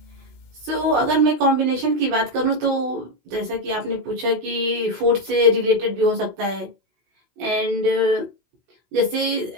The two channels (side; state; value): left; late; 16 ms